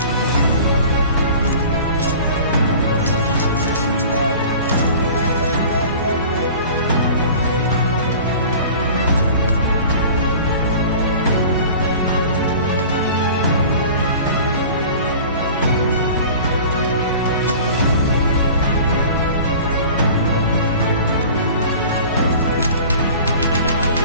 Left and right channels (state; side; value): inverted; both; correlation -0.42